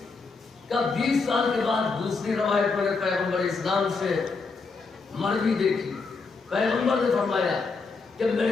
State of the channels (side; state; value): right; quieter; 4.4 dB